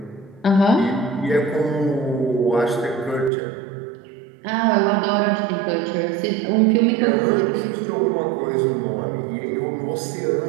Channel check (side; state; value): left; drops out; at 3.3 s